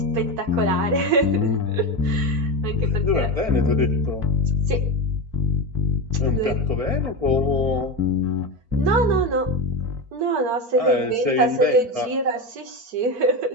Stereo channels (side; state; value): left; late; 4.5 ms